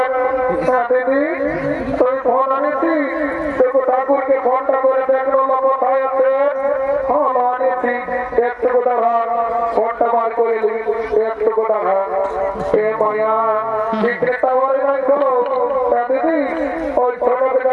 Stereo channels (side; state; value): both; identical; correlation 1.00